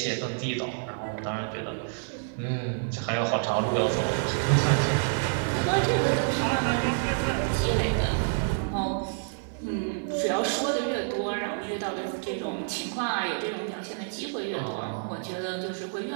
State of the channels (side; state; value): left; silent; digital silence